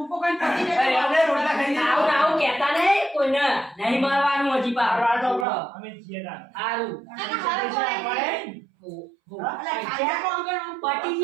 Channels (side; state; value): left; drops out; at 5.5 s